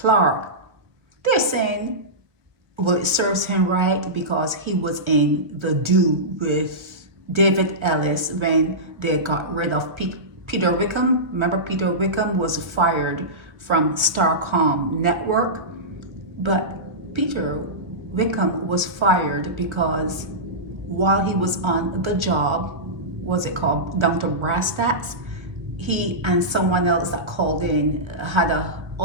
they're saying, well, it serves him right because he was in the do with David Ellis when they got rid of Peter Wickham. Remember, Peter Wickham was fired from Starcom Network, but Peter Wickham was fired because while he was on the job, what's it called, down to brass tacks, he and someone else that called in had a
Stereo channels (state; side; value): late; left; 1.5 ms